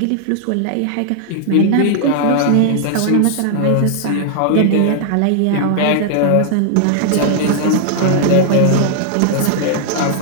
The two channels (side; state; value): both; different; correlation -0.01